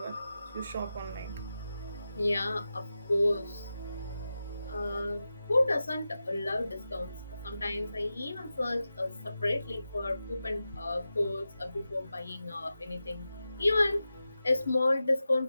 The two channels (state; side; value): inverted; both; correlation -0.92